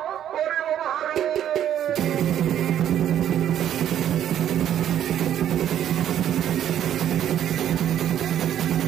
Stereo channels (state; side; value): quieter; left; 10.6 dB